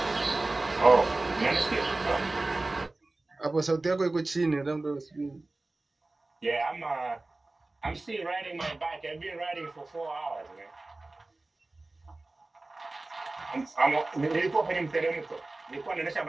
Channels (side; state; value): left; quieter; 3.0 dB